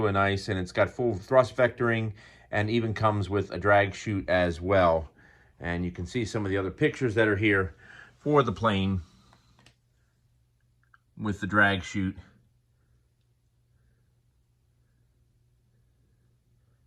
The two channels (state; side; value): identical; both; correlation 1.00